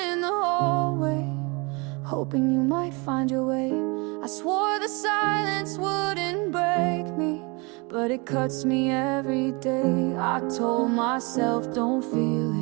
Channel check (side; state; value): left; quieter; 29.0 dB